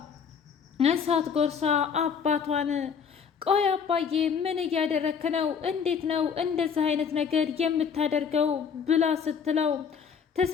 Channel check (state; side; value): quieter; right; 6.7 dB